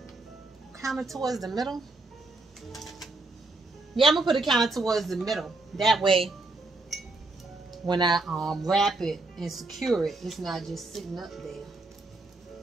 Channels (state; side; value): quieter; left; 3.2 dB